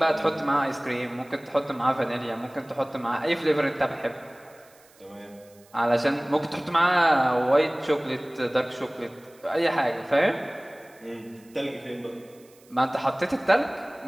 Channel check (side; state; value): right; noise; hiss, 28 dB below the sound